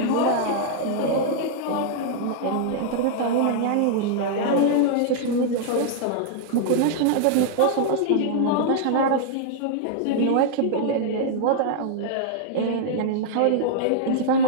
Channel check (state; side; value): different; both; correlation -0.01